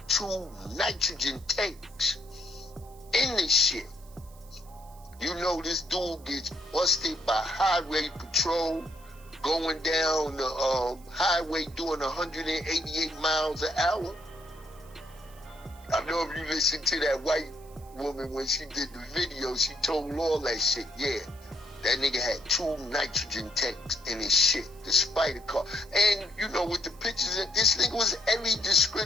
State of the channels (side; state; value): right; noise; hiss, 25 dB below the sound